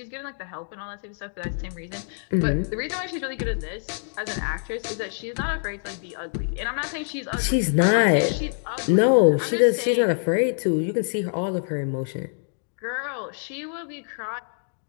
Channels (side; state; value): right; silent; digital silence